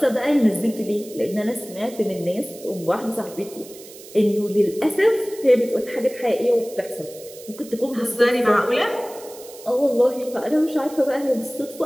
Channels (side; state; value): right; noise; hiss, 18 dB below the sound